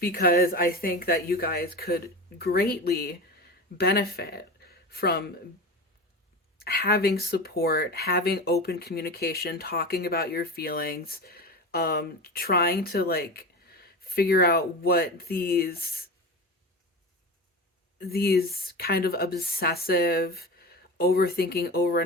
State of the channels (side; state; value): both; normal; correlation 0.27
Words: because I think that you guys could greatly benefit from having support, having open communication, talking about your feelings, trying to like figure out what these kind of obsessive overthinking,